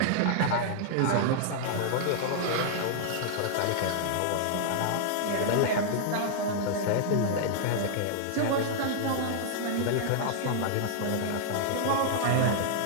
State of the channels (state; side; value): different; both; correlation -0.01